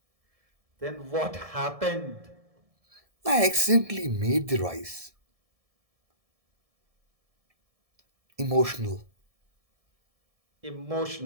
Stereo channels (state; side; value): late; left; 1.7 ms